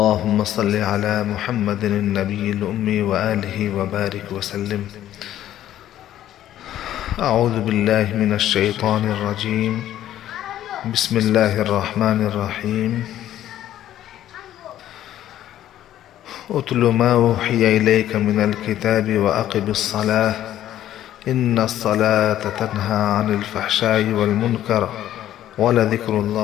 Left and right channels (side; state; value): right; quieter; 12.3 dB